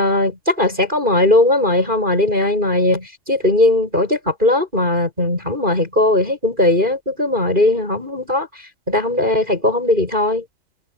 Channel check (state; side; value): late; left; 2.4 ms